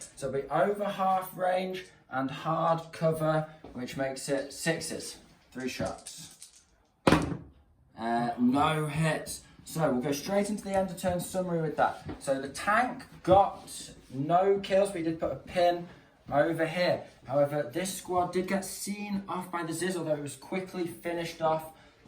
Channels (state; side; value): identical; both; correlation 1.00